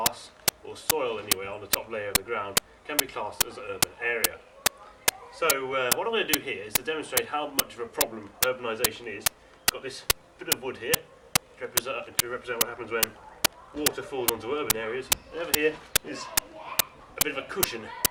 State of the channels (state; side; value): identical; both; correlation 1.00